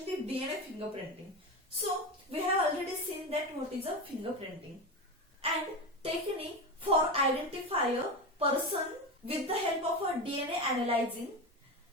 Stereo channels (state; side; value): normal; both; correlation 0.20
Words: DNA fingerprinting. So, we have already seen that what is a fingerprinting, and technique for identify a person with the help of a DNA analyzing